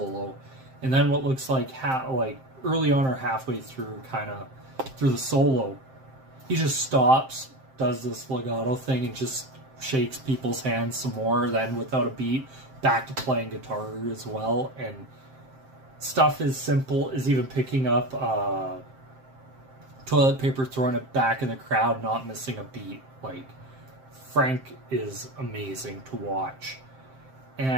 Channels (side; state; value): left; late; 7.6 ms